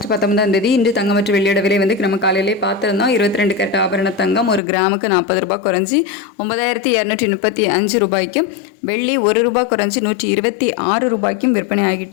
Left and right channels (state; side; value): drops out; right; at 4.6 s